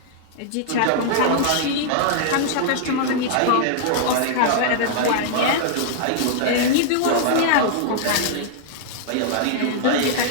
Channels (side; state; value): both; different; correlation -0.01